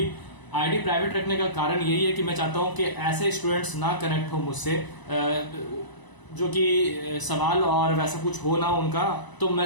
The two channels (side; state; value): right; late; 1.0 ms